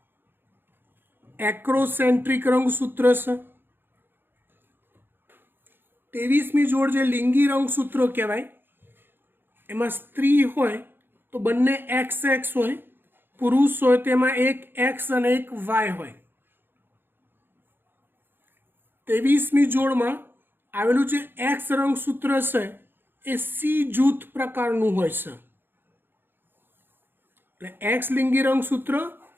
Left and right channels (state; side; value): late; left; 0.10 ms